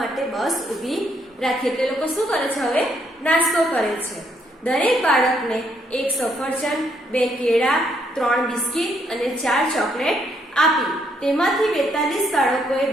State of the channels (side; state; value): both; normal; correlation 0.72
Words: બસ ઊભી રાખી. એટલે લોકો શું કરે છે? હવે નાસ્તો કરે છે. દરેક બાળકને 1 સફરજન, 2 કેળા, 3 બિસ્કિટ અને 4 ચોકલેટ આપી. તેમાંથી 42 બાળકોએ